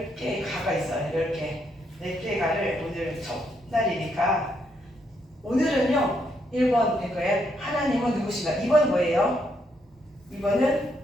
가가 있어요. 10개. 4개 가를 오늘 첫날이니까, 오늘은요 1번 될 거예요. 하나님은 누구신가? 2번 뭐예요? 2번은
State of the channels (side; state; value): both; normal; correlation 0.76